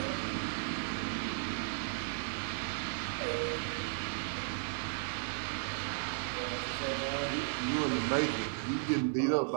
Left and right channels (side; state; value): left; silent; 54 dB below the other